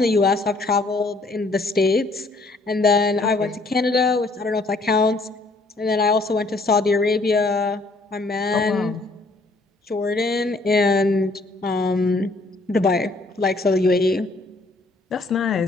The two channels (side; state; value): right; quieter; 3.1 dB